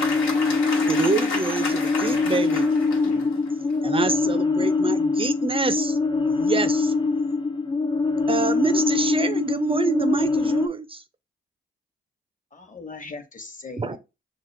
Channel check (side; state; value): both; normal; correlation 0.65